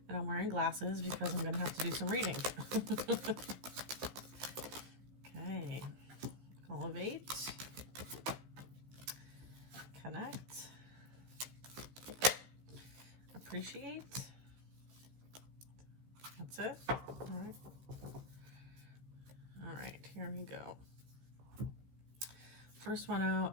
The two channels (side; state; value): left; late; 15 ms